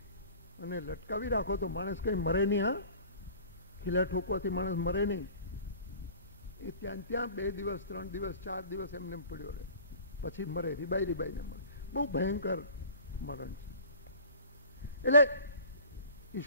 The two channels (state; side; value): inverted; both; correlation -0.44